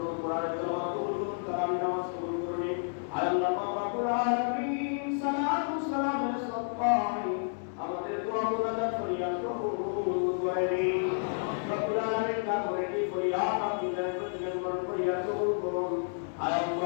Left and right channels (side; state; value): right; silent; digital silence